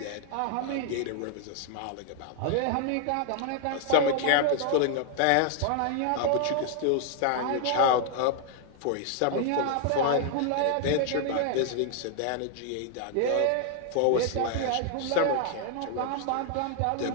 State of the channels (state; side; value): different; both; correlation 0.00